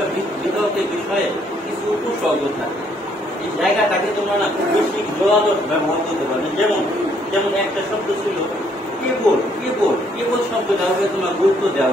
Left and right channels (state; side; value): normal; both; correlation 0.67